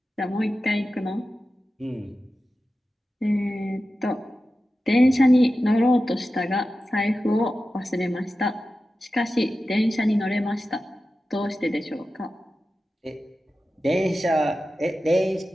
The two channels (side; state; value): both; normal; correlation 0.93